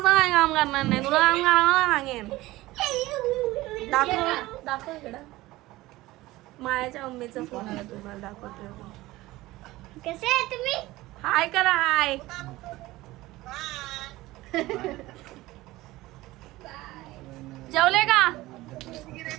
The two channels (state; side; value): quieter; left; 18.3 dB